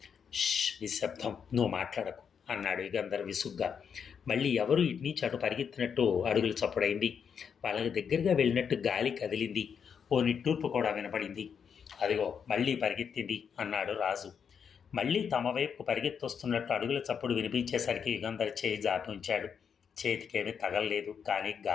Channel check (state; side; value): quieter; right; 7.1 dB